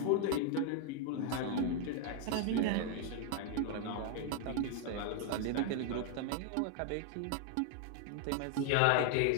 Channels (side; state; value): both; different; correlation 0.00